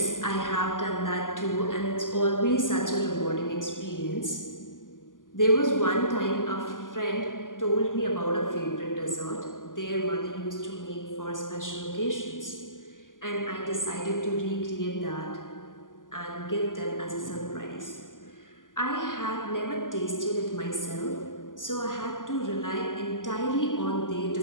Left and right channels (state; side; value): late; right; 0.88 ms